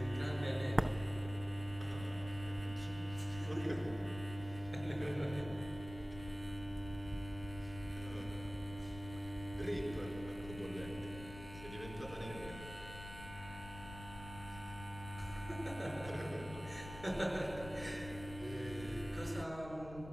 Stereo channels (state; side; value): noise; left; rumble, 12 dB below the sound